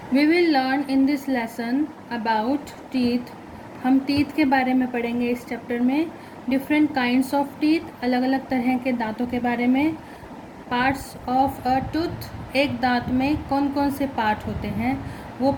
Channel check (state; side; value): identical; both; correlation 1.00